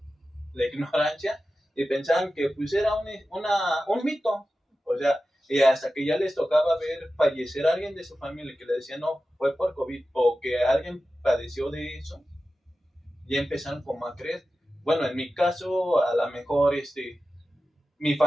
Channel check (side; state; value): both; normal; correlation 0.94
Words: la ignorancia y pensaban que pues era un mito, o sea, y hasta que ya les tocaba ver fallecer a alguien de su familia que le decía no, fue por COVID o que alguien padeció de eso, ya empezaron como a creer. Bueno, en mi caso, a lo mejor mi